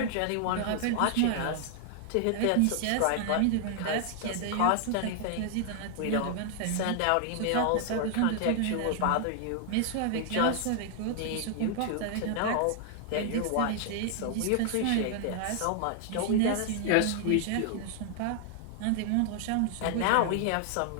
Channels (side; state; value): both; different; correlation 0.00